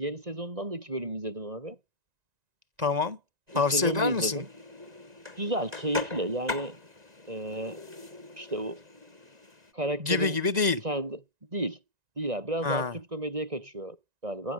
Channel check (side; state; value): left; late; 1.9 ms